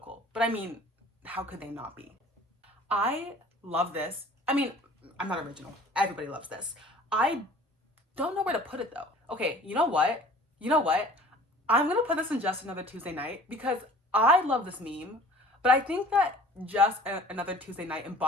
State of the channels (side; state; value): both; normal; correlation 0.48